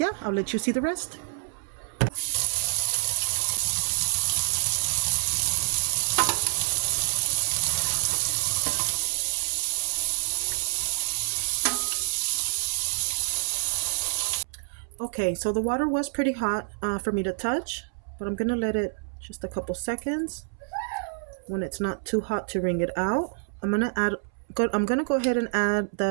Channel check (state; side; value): silent; left; 60 dB below the other